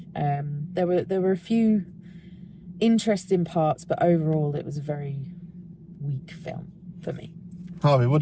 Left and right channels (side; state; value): both; identical; correlation 1.00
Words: There were a few interesting parts, but overall it was a very weak film for me. Harvey, what